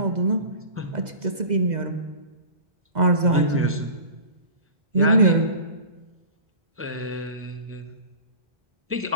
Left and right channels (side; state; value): left; late; 2.0 ms